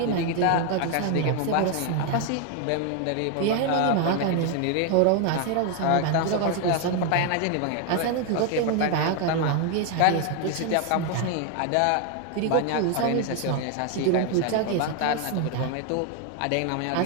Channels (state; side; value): different; both; correlation 0.01